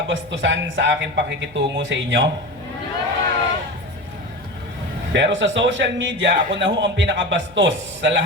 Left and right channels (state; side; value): noise; left; hum, 23 dB below the sound